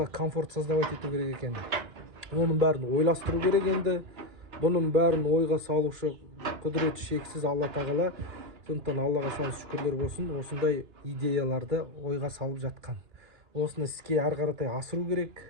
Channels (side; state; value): left; late; 3.4 ms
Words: комфорт создавать ету керек екен. Оның бәрін ойластыру керек енді. Бұның бәрін ойға салушы құдіреті шексіз Алла тағала. Сондықтан Аллаға сан шүкірлер болсын, осындай идеяларды ойға салып жатқан. Осыны іске ары қаратай асыру керек.